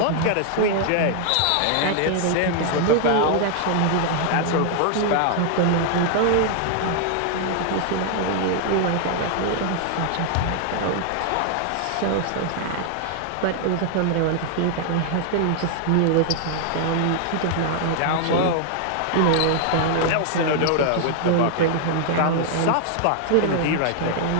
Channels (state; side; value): different; both; correlation 0.00